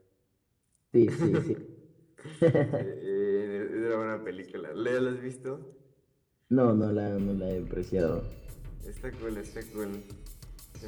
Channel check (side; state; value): both; identical; correlation 1.00